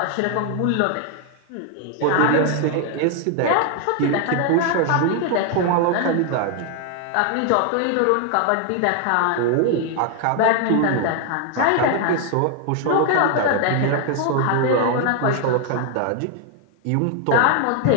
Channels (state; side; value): different; both; correlation 0.00